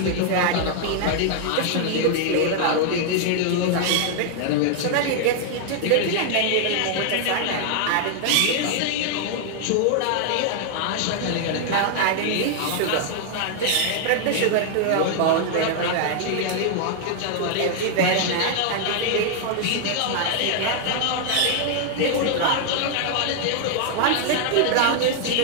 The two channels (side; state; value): both; different; correlation 0.00